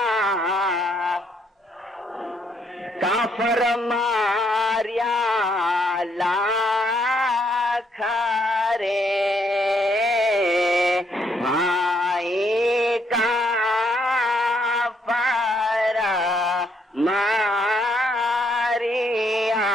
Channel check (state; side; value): normal; both; correlation 0.72